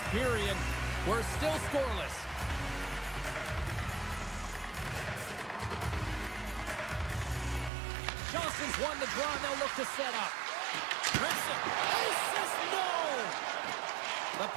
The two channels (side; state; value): left; drops out; at 7.7 s